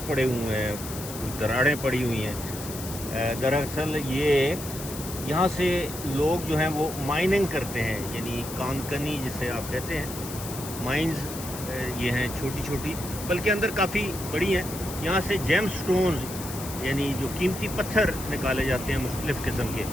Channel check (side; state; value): left; noise; hiss, 10 dB below the sound